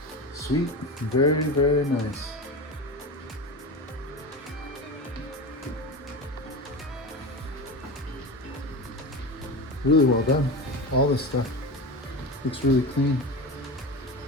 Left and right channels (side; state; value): both; normal; correlation 0.26